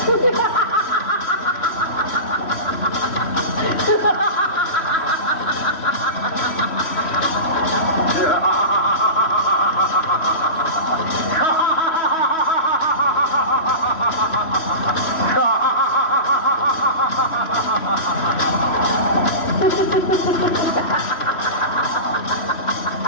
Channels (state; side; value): late; right; 3.1 ms